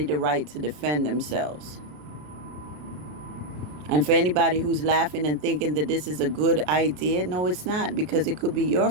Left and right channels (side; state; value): left; late; 33 ms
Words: the right to defend themselves. And for anybody who's laughing and thinking that this is a good idea, no, it's not, because it could be your